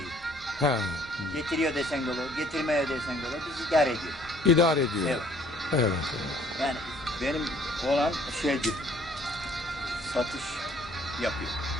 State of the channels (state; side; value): normal; both; correlation 0.59